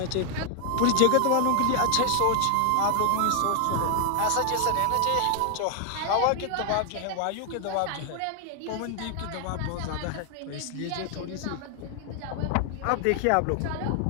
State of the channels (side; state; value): both; different; correlation 0.00